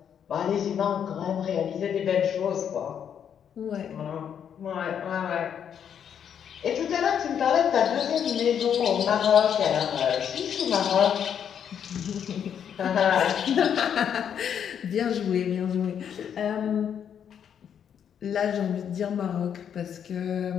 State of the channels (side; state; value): right; quieter; 8.4 dB